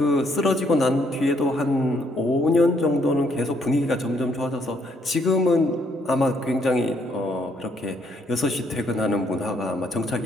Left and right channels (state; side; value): normal; both; correlation 0.70